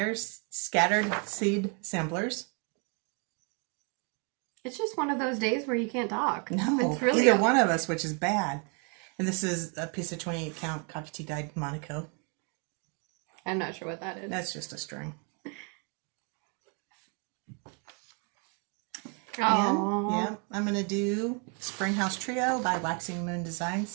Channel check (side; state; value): left; quieter; 36.8 dB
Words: Seed Samplers. It's just one of those days where you can't talk. No, it's really either one of us, which is bad. And this is a piece of 28 count coffee tea dyed Monaco. I'm not sure what that is. That's just a string. Oh, yeah, I'm going to do Spring House Trio by Waxing Moon